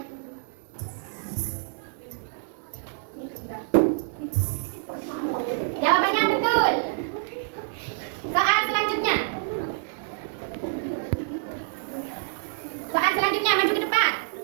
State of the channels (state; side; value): silent; left; 60 dB below the other